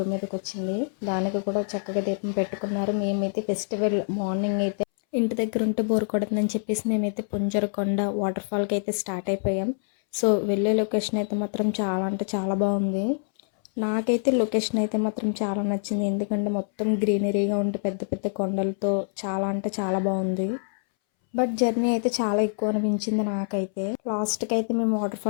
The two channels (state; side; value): silent; right; 61 dB below the other